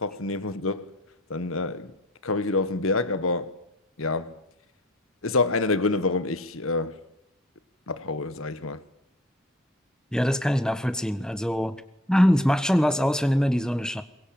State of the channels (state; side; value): normal; both; correlation 0.52